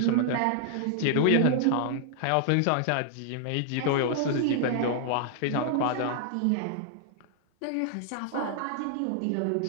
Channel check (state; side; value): different; both; correlation -0.01